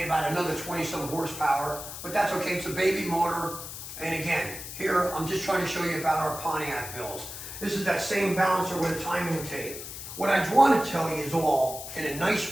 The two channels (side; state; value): left; noise; hiss, 10 dB below the sound